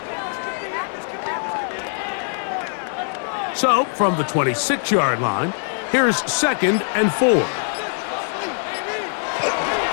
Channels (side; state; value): right; silent; digital silence